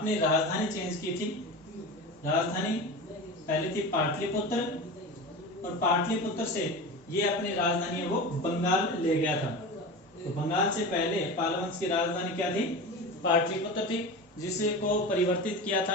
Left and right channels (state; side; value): normal; both; correlation 0.29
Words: राजधानी चेंज की थी। राजधानी पहले थी पाटलिपुत्र और पाटलिपुत्र से ये अपनी राजधानी है वो बंगाल ले गया था। तो बंगाल से पहले पाल वंश की राजधानी क्या थी? पाटलिपुत्र थी, जिसे को परिवर्तित किया